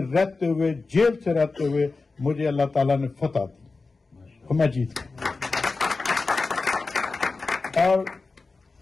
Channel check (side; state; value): right; quieter; 3.9 dB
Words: रहते हुए, जेल से रहते हुए मुझे अल्लाह ताला ने फतह दी और मैं जीत गया। और